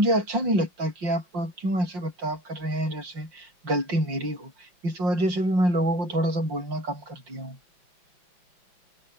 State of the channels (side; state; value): left; late; 5.6 ms